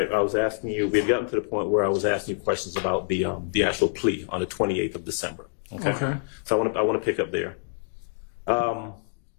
I was asking you, we had gotten to the point where I was asking you questions about the actual plea on the 28th of December. Okay. So I want to pick up there. All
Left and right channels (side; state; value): right; silent; digital silence